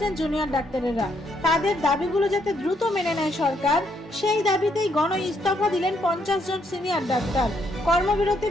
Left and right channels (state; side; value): normal; both; correlation 0.73